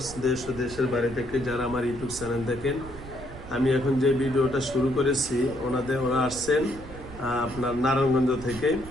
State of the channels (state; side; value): noise; right; rumble, 14 dB below the sound